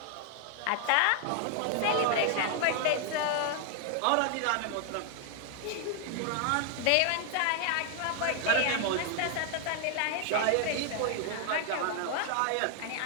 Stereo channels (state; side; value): different; both; correlation 0.00